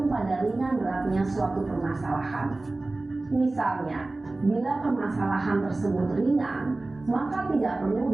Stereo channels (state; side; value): quieter; left; 3.1 dB